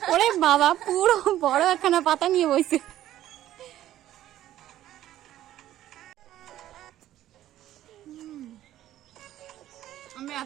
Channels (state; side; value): quieter; left; 13.1 dB